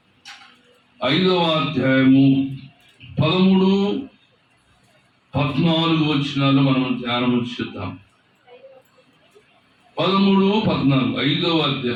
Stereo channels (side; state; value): both; identical; correlation 1.00